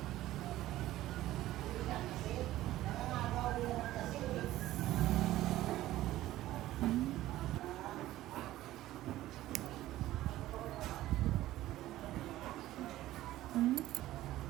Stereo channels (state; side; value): quieter; left; 15.1 dB